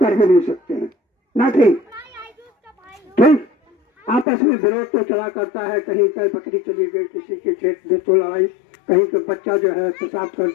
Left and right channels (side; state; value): right; drops out; at 4.2 s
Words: ही नहीं सकते हैं ना। ठीक, आपस में विरोध तो चला करता है, कहीं कहीं बकरी चली गई, किसी के खेत में तो लड़ाई, कहीं का बच्चा जो है पेशाब कर